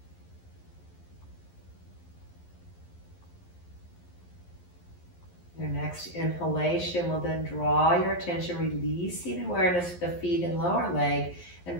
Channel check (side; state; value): right; late; 11 ms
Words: Your next inhalation will then draw your attention, releasing awareness of the feet and lower leg and